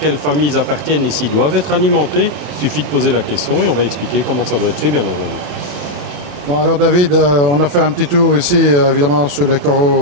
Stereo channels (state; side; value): late; left; 28 ms